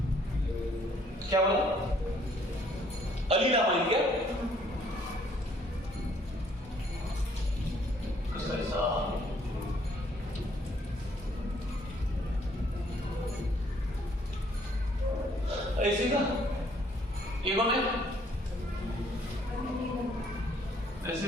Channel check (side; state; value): both; normal; correlation 0.64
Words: क्या बोला? अलीनामाइन क्या? कैसा? ऐसे का ये कौन है? दिस